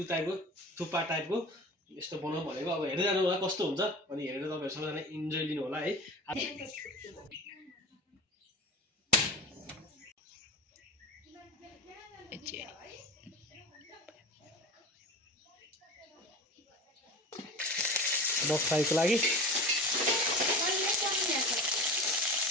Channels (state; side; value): normal; both; correlation 0.33